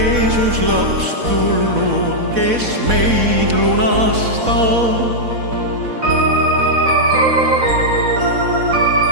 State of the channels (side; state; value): left; late; 4.1 ms